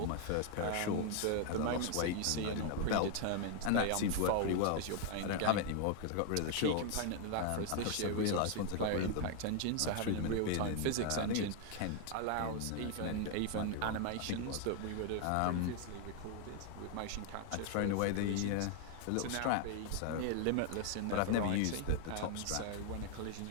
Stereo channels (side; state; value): both; different; correlation 0.00